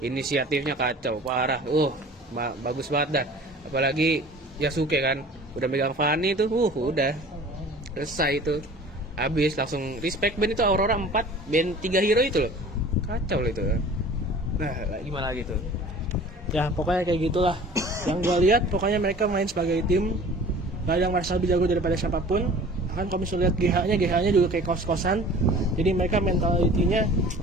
inisiatifnya kacau, parah. Bagus banget dah. Apalagi Yasuke kan, udah megang Fanny tuh, udah selesai itu. Habis langsung respect band itu Aurora 4, band 3 hero itu loh. Kacau loh itu. Nah, gimana lagi tuh? Ya, pokoknya kayak gitulah. Yang gua lihat pokoknya mereka main sebagai tim. Gak ada yang merasa lebih jago daripada siapapun. Kan kalau misalnya lihat GH-nya juga kayak kos-kosan. Jadi mereka mentalitinya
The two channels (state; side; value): normal; both; correlation 0.45